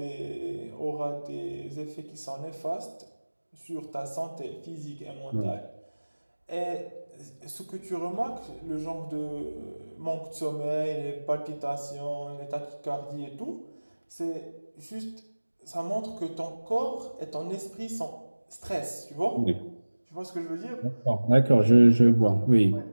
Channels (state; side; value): inverted; both; correlation -1.00